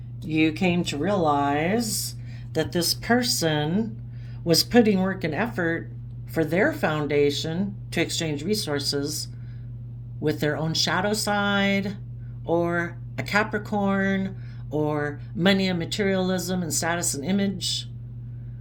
you came to realize that this person was putting work and effort for their foundation to exchange resources with their own shadow side, or a Capricorn, or money and materialism and status and image.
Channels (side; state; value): both; identical; correlation 1.00